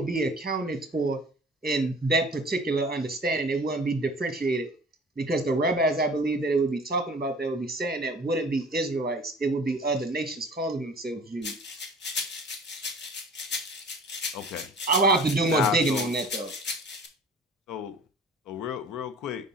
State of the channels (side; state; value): both; normal; correlation 0.46